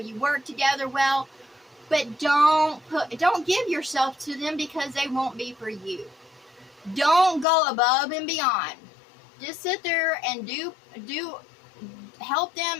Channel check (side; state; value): right; drops out; at 7.5 s